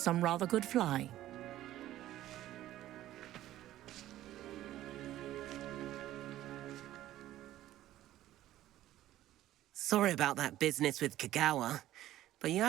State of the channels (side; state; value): left; quieter; 14.0 dB